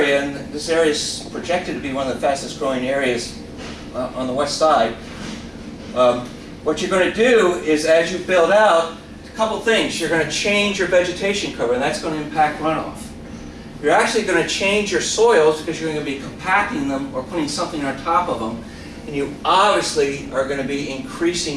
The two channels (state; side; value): identical; both; correlation 1.00